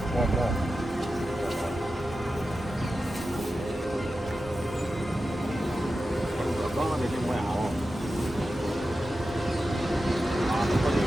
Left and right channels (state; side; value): normal; both; correlation 0.92